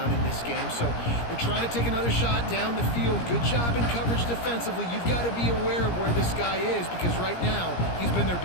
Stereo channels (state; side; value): late; right; 17 ms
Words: in this game, so they're trying to take another shot down the field. Good job in coverage defensively. You've got to be aware of where this guy is because right now he's been their